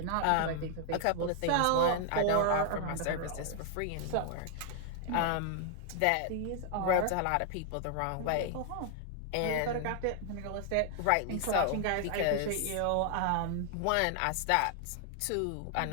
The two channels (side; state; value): both; different; correlation 0.00